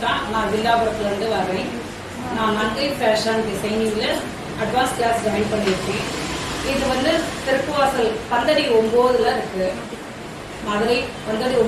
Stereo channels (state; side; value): identical; both; correlation 1.00